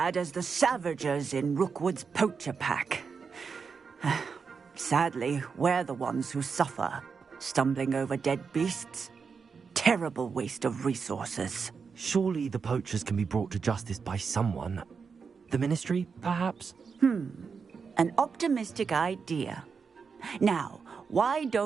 as the Savagers in Rookwood's poacher pack. Sadly, we're the ones who suffer, stumbling over dead beasts. Terrible waste of resources. Surely the poachers can be brought to justice by someone. The Ministry, perhaps? An optimistic idea. Now, why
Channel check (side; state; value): left; quieter; 5.6 dB